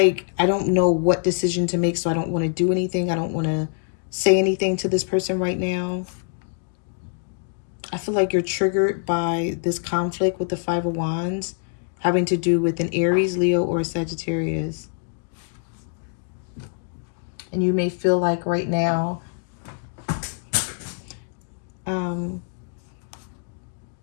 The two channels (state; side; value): silent; right; digital silence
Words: I don't know what decision to make, so I don't want to do anything. I don't want to say anything to this person right now. I feel like you're triggered by this conflict with the Five of Wands, having to do with an Aries, Leo, or a Sagittarius. And you may feel like right now,